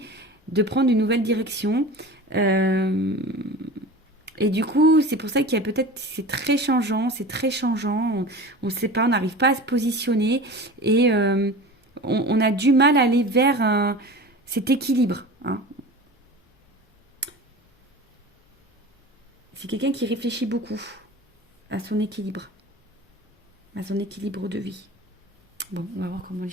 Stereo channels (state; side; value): normal; both; correlation 0.35